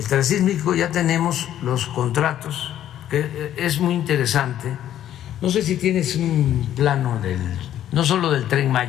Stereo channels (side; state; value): right; quieter; 11.5 dB